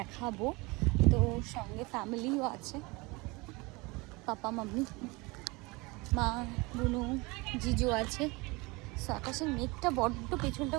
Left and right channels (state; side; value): quieter; left; 25.1 dB